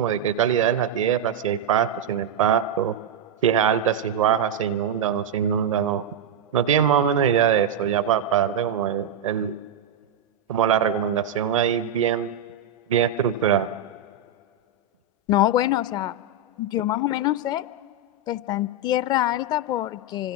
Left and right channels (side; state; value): left; quieter; 4.1 dB